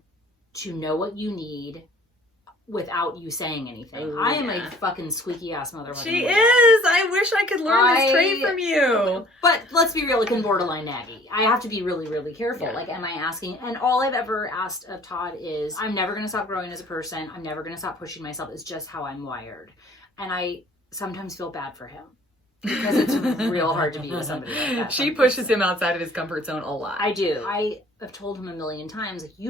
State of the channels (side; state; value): both; normal; correlation 0.53